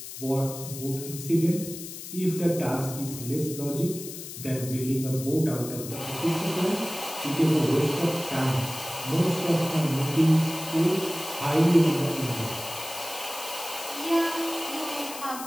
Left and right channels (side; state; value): left; noise; hiss, 11 dB below the sound